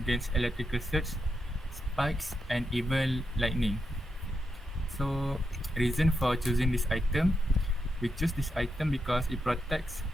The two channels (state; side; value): normal; both; correlation 0.85